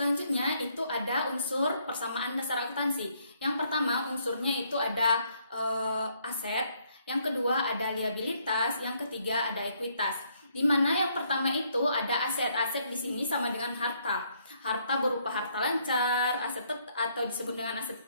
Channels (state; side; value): inverted; both; correlation -0.70